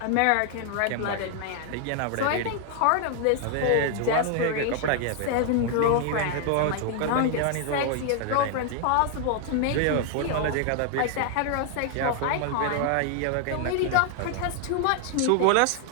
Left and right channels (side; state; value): both; different; correlation 0.00